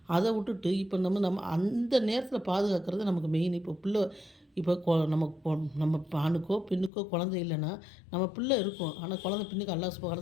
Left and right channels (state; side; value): drops out; right; at 6.9 s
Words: அதை விட்டுட்டு இப்போ நம்ம அந்த நேரத்தில் பாதுகாக்கிறது நமக்கு மெயின். இப்போ நம்ம ஆணுக்கோ பெண்ணுக்கோ குழந்தை இல்லைன்னா நம்ம பிள்ளை இருக்கும், ஆனால் குழந்தை பின்னுக்கு அல்லாஹ் சுப்ஹானஹு வ